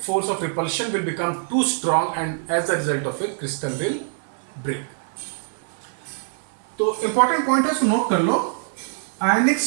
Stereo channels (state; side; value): silent; left; 58 dB below the other